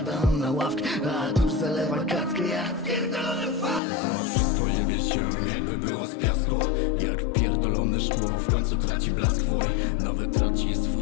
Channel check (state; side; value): drops out; right; at 3.8 s